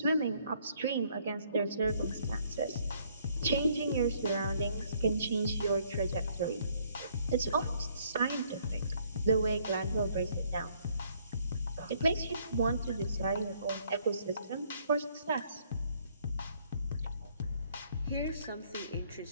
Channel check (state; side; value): inverted; both; correlation -0.66